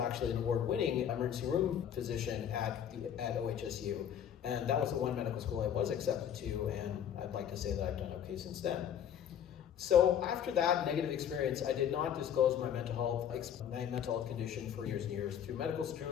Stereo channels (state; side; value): quieter; right; 9.2 dB